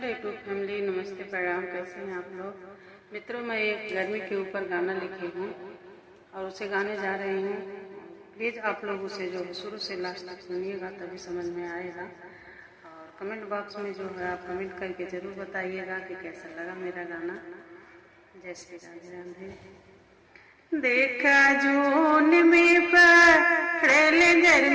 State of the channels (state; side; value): identical; both; correlation 1.00